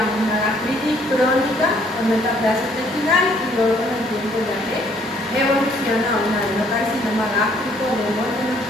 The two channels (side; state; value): both; normal; correlation 0.64